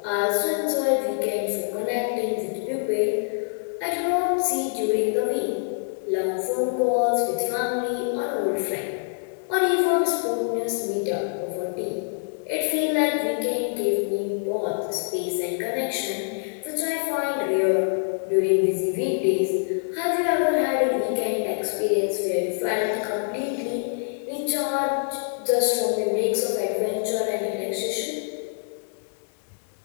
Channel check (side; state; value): right; silent; 59 dB below the other